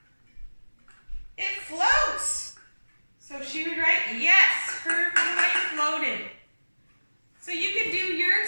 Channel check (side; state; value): both; inverted; correlation -1.00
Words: it floats. So she would write yes, her toy floated. So you could do your